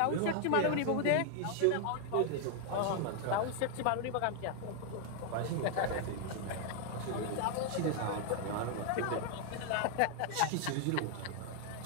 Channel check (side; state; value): both; different; correlation 0.00